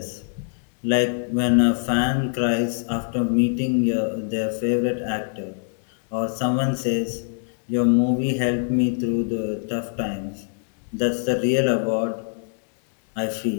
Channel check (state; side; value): silent; right; 63 dB below the other